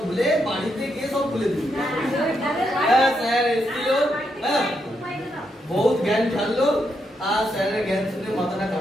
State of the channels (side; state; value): both; normal; correlation 0.80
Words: ভুলে, বাড়িতে গিয়ে সব ভুলে দিবি। হ্যাঁ স্যার এসেছিল, হ্যাঁ বহুত জ্ঞান ছাড়লো, আর স্যারের জ্ঞান শুনে মাথাটা